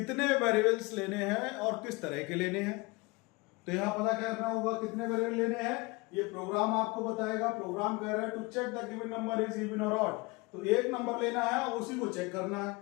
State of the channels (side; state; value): right; quieter; 25.1 dB